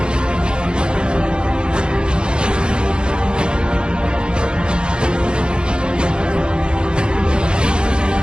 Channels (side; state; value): left; late; 0.051 ms